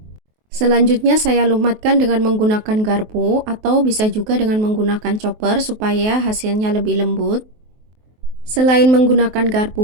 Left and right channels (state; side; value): late; left; 23 ms